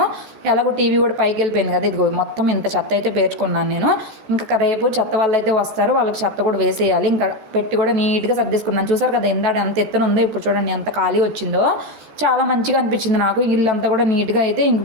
ఎలాగో టీవీ కూడా పైకి వెళ్ళిపోయింది కదా, ఇదిగో మొత్తం ఇంత చెత్త అయితే పేర్చుకున్నాను నేను. ఇంకా రేపు చెత్త వాళ్ళు అయితే వస్తారు, వాళ్ళకి చెత్త కూడా వేసేయాలి. ఇంకా పెట్టి కూడా నీట్గా సర్దేసుకున్నాను. చూసారు కదా ఇందాడ ఎంత ఎత్తున ఉందో, ఇప్పుడు చూడండి ఎంత ఖాళీ వచ్చిందో. చాలా మంచిగా అనిపించింది నాకు. ఇల్లంతా కూడా నీట్గా అయితే ఇంక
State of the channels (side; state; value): left; late; 14 ms